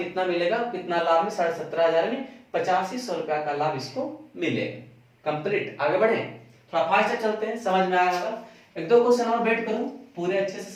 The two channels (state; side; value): identical; both; correlation 1.00